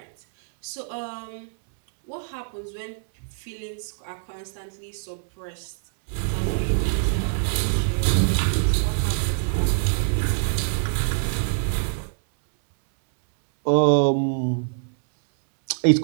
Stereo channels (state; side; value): silent; left; 62 dB below the other